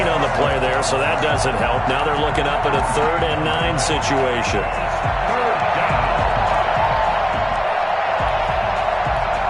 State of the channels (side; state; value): both; identical; correlation 1.00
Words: on the play there, so that doesn't help. Now they're looking up at a 3rd and 9 situation.